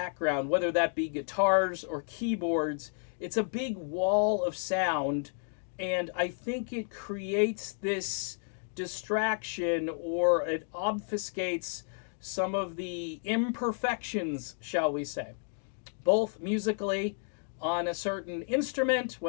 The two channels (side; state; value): right; silent; 57 dB below the other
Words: whether that be guitars or keyboards. It's a big wall of sound, and I think it creates this distraction, or it obfuscates some of the imperfections, shall we say, both musically on a certain instrument,